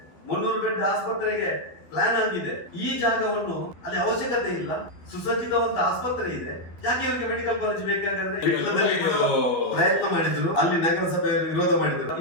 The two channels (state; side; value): late; right; 12 ms